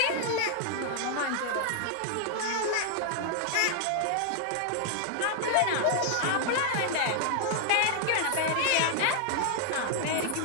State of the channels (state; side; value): different; both; correlation 0.00